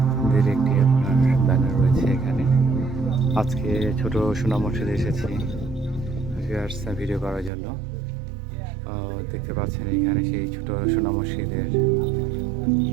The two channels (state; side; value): drops out; left; at 7.5 s